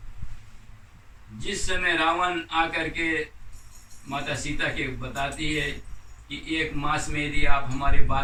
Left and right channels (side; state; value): both; identical; correlation 1.00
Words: जिस समय रावण आकर के माता सीता के बताती है कि 1 मास में यदि आप हमारे